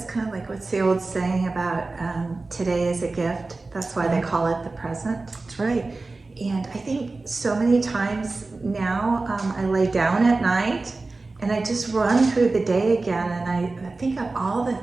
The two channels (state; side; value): quieter; left; 3.5 dB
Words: kind of like what's the old saying about today is a gift. That's why they call it the present. That's right. And I think so many times now I lay down at night and I just run through the day again, and I think of all the